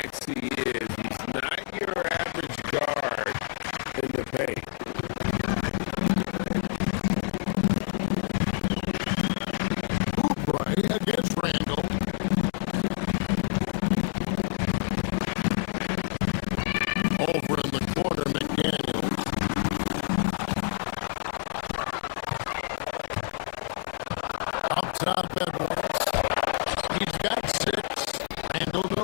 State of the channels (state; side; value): silent; right; digital silence